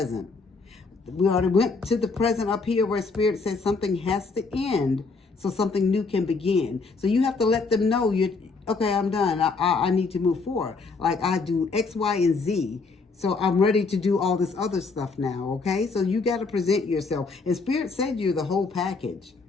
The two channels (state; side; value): quieter; right; 4.2 dB